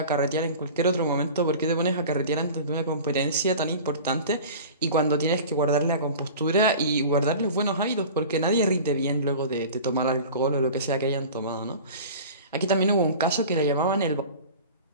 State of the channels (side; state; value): both; inverted; correlation -0.38